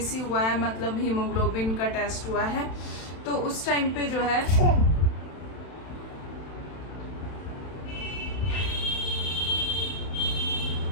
हुआ है, मतलब हीमोग्लोबिन का टेस्ट हुआ है। तो उस टाइम पे जो है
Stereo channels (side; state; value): right; late; 31 ms